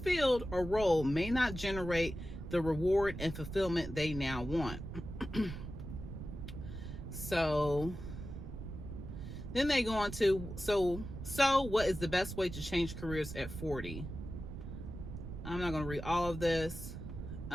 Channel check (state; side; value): noise; right; rumble, 8 dB below the sound